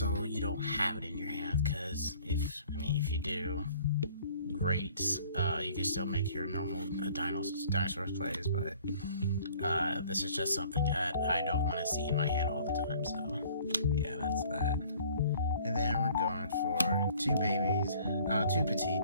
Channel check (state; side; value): inverted; both; correlation -0.54